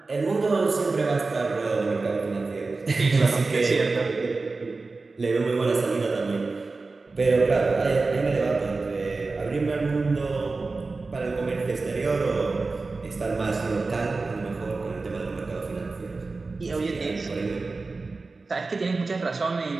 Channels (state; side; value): quieter; left; 3.8 dB